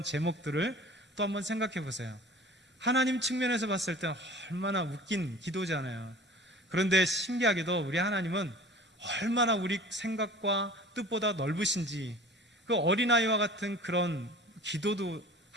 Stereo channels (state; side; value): normal; both; correlation 0.42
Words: 제목들을 또 한번 생각해 보세요. 하나님 측면에서 봤을 때 얼마나 웃긴 기도잖아요. 그런데 신기하게도 우리 하나님은 얼마나 우리 생각과 뜻보다 넓으신지, 그 어린아이와 같은 그런 기도도